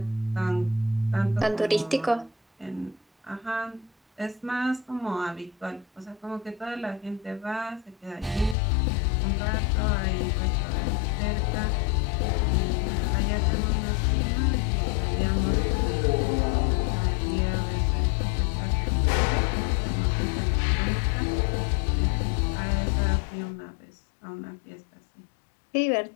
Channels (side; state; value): right; drops out; at 8.6 s